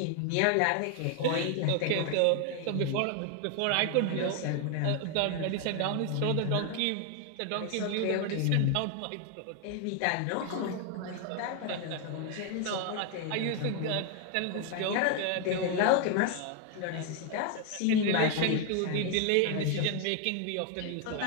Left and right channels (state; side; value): different; both; correlation 0.01